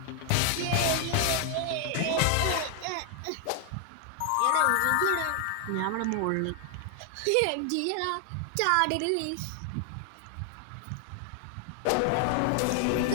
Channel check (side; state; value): both; different; correlation 0.00